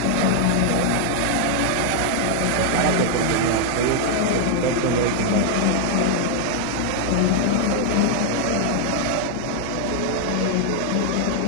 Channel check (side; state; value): both; different; correlation 0.00